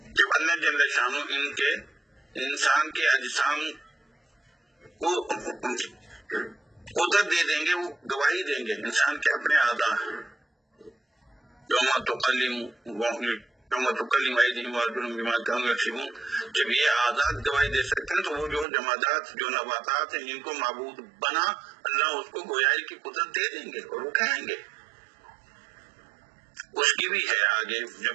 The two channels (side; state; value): left; drops out; at 18.7 s